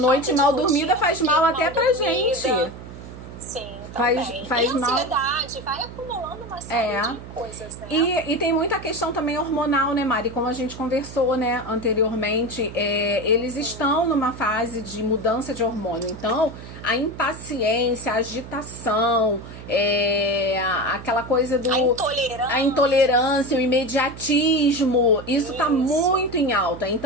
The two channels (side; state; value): right; noise; hum, 14 dB below the sound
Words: mal dormida faz mal até pra gente. Sim, faz e mal. Ansiedade, vai acumulando uma série de coisas, né? E tem muita questão também hormonal, né, Mari? Como a gente conversou, né, anteriormente, eles estão numa fase de mudança de hormônio. Então, a impaciência, a agitação, aquela coisa do... A intolerância, o imediatismo, isso tá muito em alta.